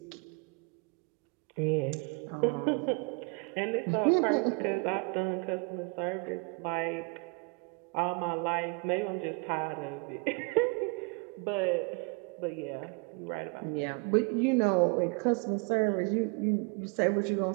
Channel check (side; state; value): left; quieter; 31.1 dB